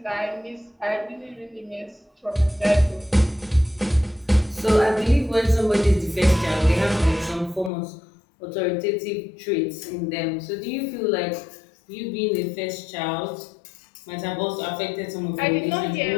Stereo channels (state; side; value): drops out; right; at 7.7 s